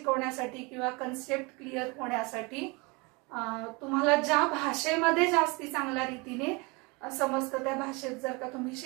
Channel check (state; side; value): quieter; left; 27.2 dB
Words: किंवा कन्सेप्ट क्लिअर होण्यासाठी तुम्हाला ज्या भाषेमध्ये जास्ती चांगल्या रीतीने समजतं त्या भाषेत जर का तुम्ही